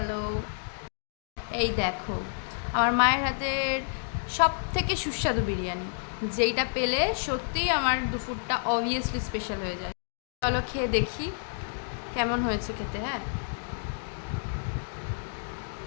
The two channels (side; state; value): right; silent; digital silence